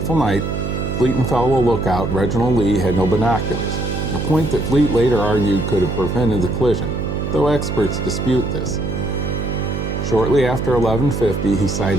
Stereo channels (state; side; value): noise; right; hum, 3 dB below the sound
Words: night, Fleet and fellow lookout Reginald Lee had no binoculars, a point that Fleet later argued could have prevented the collision, though experts dispute this. Shortly after 11:50, he